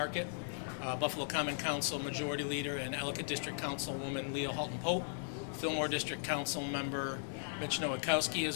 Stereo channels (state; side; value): silent; right; digital silence